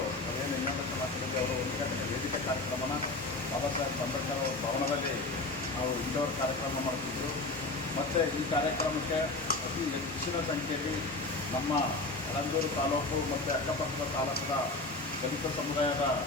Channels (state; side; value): quieter; right; 3.1 dB